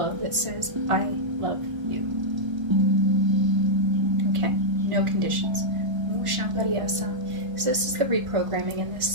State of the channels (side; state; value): left; late; 1.5 ms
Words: that says, I love you. Okay? No conditions. So this is the reprogramming in this